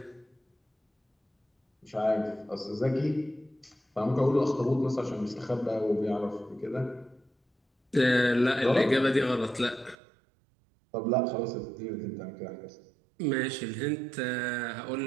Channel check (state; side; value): drops out; left; at 10.0 s